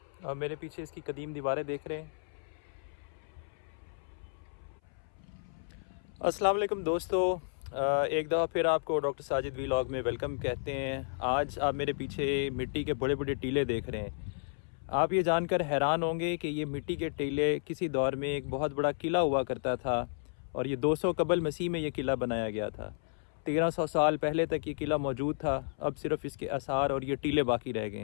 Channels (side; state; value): right; silent; 56 dB below the other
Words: अब मेरे पीछे इसकी कदीम दीवारें देख रहे हैं। अस्सलाम वालेकुम दोस्तों, एक दफ़ा फिर आपको डॉक्टर साजिद व्लॉग में वेलकम कहते हैं। आज आप मेरे पीछे मिट्टी के बड़े बड़े टीले देख रहे हैं। आप ये जानकर हैरान होंगे कि ये मिट्टी के टीले किसी दौर में एक बहुत बड़ा किला हुआ करता था और ये 200 कबल मसीह में ये किला बनाया गया था। 1300 साल पहले तक ये किला मौजूद था। अब सिर्फ इसके आसार और ये टीले बाकी रह गए